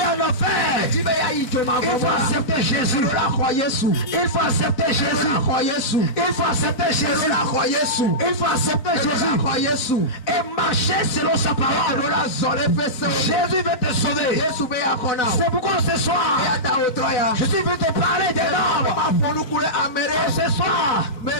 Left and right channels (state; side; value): late; right; 4.0 ms